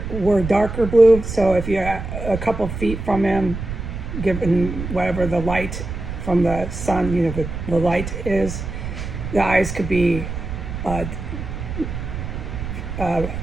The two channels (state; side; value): noise; right; rumble, 7 dB below the sound